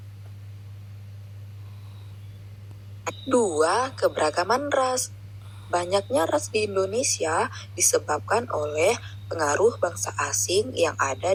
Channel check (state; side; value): identical; both; correlation 1.00